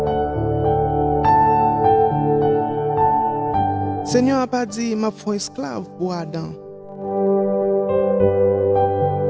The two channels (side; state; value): both; identical; correlation 1.00